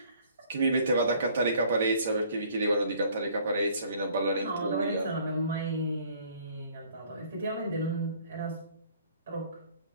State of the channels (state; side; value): inverted; both; correlation -0.57